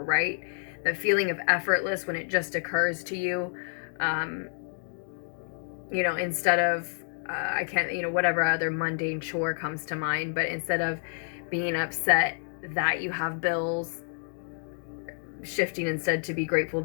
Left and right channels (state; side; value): silent; right; digital silence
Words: right? The feeling of effortless when it just occurs to you, instead of I can't, whatever other mundane chore comes to mind, but instead of being upset that you have bills, shifting instead to be grateful